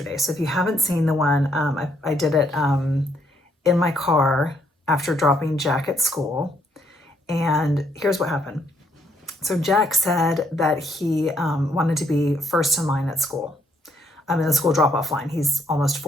So if you haven't seen the one, I did it in my car after dropping Jack at school. And here's what happened. So Jack said that he wanted to be first in line at school. I'm in the school drop-off line. He's almost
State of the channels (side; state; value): both; normal; correlation 0.71